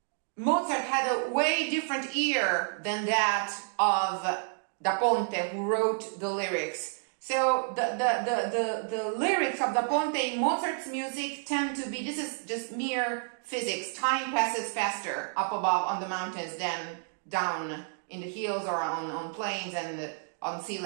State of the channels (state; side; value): silent; left; 58 dB below the other